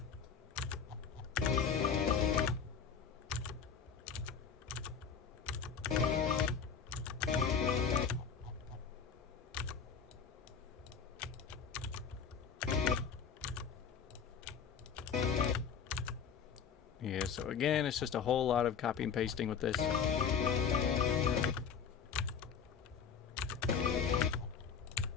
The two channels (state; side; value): quieter; right; 6.5 dB